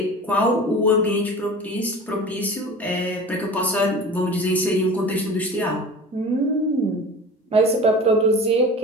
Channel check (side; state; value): both; normal; correlation 0.38